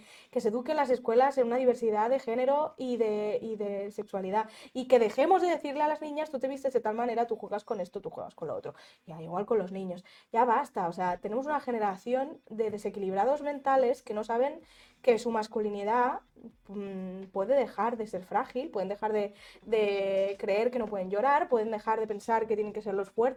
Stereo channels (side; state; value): both; identical; correlation 1.00